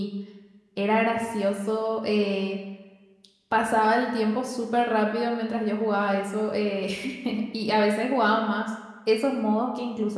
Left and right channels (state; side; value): identical; both; correlation 1.00